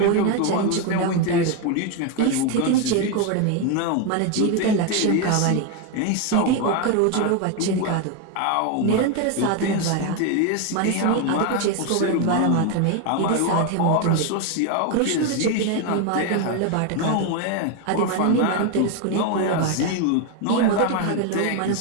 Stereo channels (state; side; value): different; both; correlation 0.02